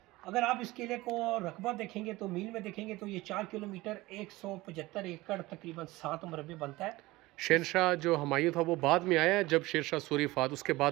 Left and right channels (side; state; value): left; quieter; 19.7 dB